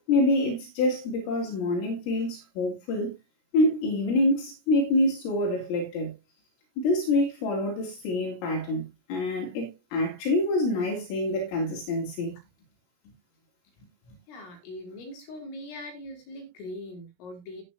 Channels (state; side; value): late; right; 17 ms